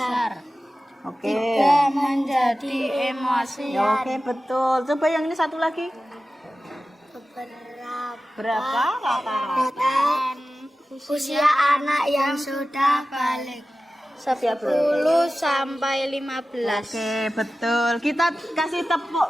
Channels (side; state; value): both; normal; correlation 0.95